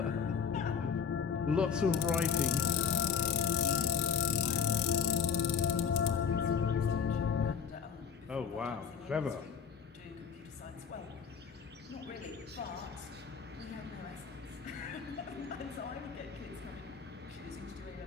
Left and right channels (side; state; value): right; quieter; 6.9 dB